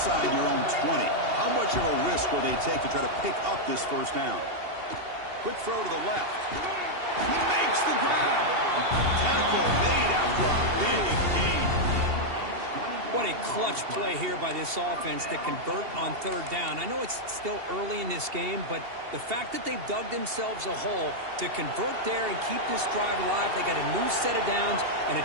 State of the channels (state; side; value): late; left; 2.7 ms